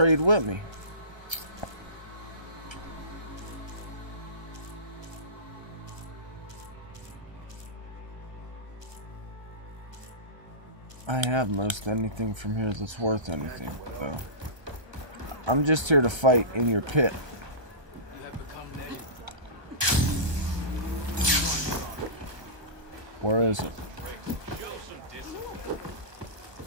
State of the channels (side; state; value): left; late; 1.3 ms